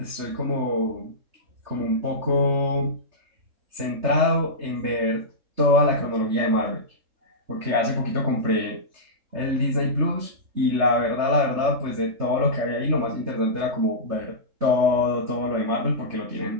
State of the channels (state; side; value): late; left; 3.7 ms